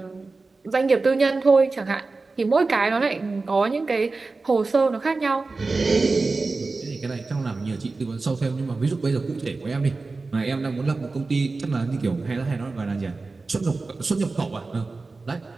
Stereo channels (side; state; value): left; quieter; 3.8 dB